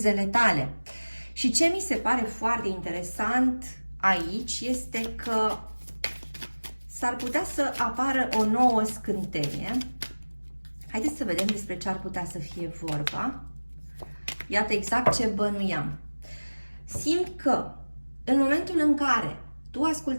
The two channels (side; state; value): both; inverted; correlation -1.00